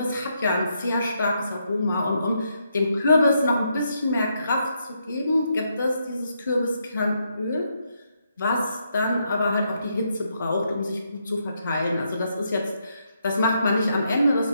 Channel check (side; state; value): both; inverted; correlation -0.78